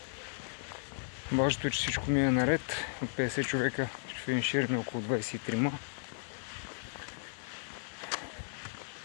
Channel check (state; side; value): silent; right; digital silence